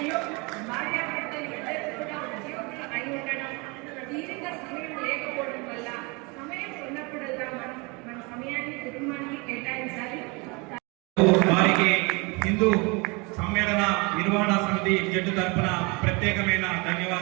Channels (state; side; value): quieter; left; 28.5 dB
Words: భార్యాభర్తలు ఇద్దరు కూడా ఉద్యోగులు అయి ఉండడం, తీరిక సమయం లేకపోవడం వల్ల సమయం ఉన్నప్పుడల్లా మనం మన సమయాన్ని కుటుంబానికి కేటాయించాలి. వారికి హిందూ సమ్మేళన నిర్వహణ సమితి జట్టు తరఫున ప్రత్యేకమైన